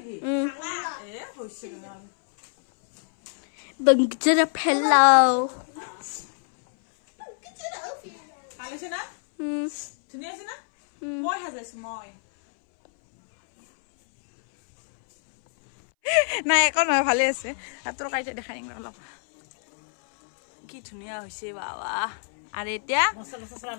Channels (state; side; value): silent; right; 61 dB below the other